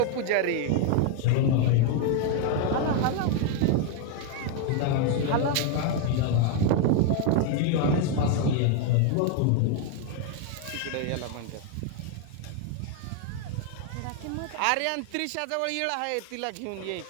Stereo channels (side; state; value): both; different; correlation 0.01